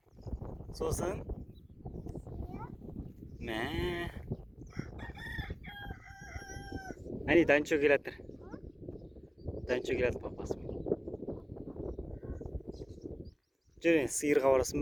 Сосын? Мә. Әне Данчо келатыр. Данчо келатыр папасымен. Жүр, сиырға барасың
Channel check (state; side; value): identical; both; correlation 1.00